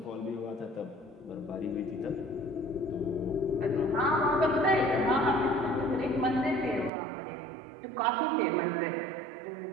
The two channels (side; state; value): left; drops out; at 6.9 s